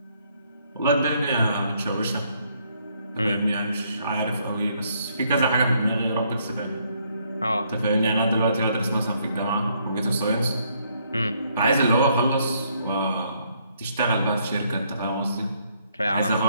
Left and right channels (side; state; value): both; inverted; correlation -0.70